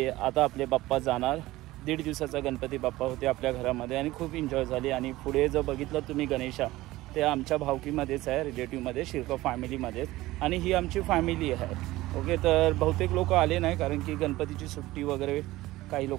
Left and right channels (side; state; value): left; quieter; 17.8 dB